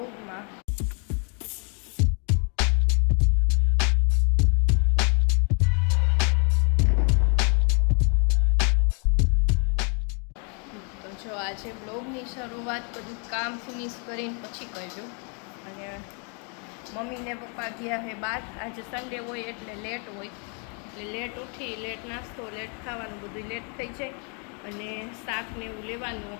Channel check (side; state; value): right; quieter; 38.2 dB